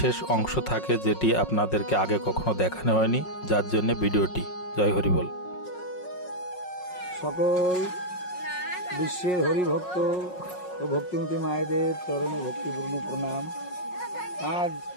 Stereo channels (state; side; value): late; right; 5.5 ms